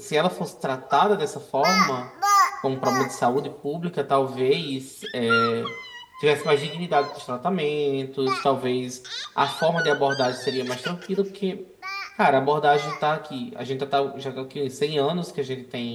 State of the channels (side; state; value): both; identical; correlation 1.00